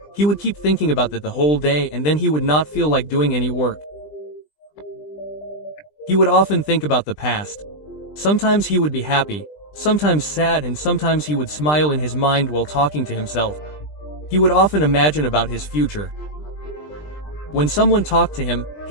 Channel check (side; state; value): right; late; 20 ms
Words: he would keep thinking about that the whole day, and then he would not feel like doing any work. He would often think about the past. Sometimes he would be happy, sometimes sad, and sometimes he would smile in his mind while talking to himself. He would often imagine about his future. When someone talked to him,